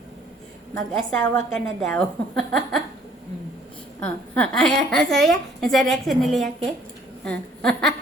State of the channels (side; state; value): both; normal; correlation 0.59